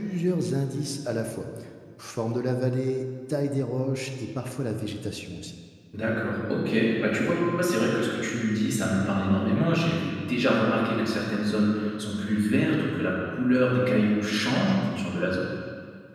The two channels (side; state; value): both; identical; correlation 1.00